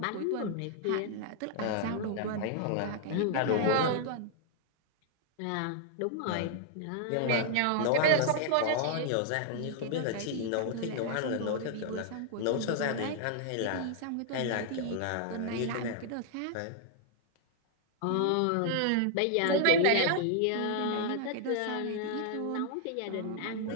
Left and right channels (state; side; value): different; both; correlation -0.01